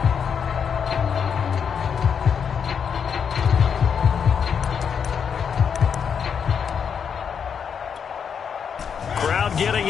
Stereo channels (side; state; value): right; quieter; 7.1 dB